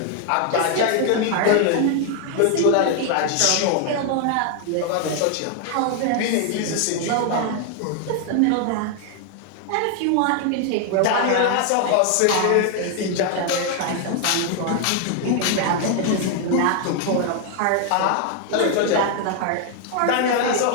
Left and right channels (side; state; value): both; different; correlation 0.00